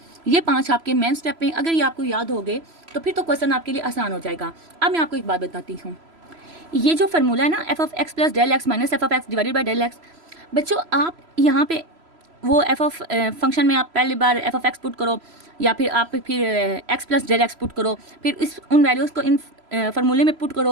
ये 5 आपके मेन स्टेप हैं, अगर ये आपको याद हो गए तो फिर तो क्वेश्चन आपके लिए आसान हो जाएगा। अब मैं आपको एक बात बताती हूँ, ये जो फार्मूला है ना, f of x plus del x minus f of x divided by del x, बच्चों आप यहाँ पे वो एफ ऑफ फंक्शन में आप पहली बार एफ ऑफ एक्स पुट करो, या फिर आप फिर x plus del x put करो, फिर इस उन वैल्यूज़ को इन फार्मूले में पुट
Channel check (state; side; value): late; left; 3.0 ms